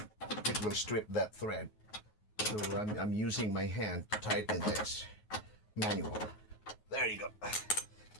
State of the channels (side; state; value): right; late; 9.4 ms